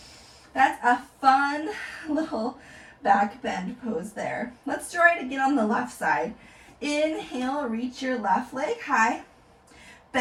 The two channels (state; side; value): identical; both; correlation 1.00